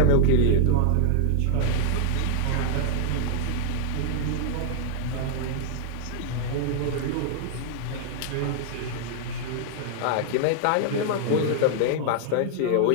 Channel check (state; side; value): different; both; correlation 0.00